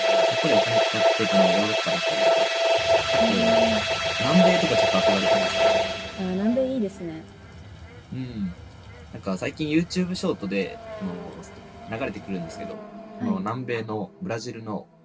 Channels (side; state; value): both; identical; correlation 1.00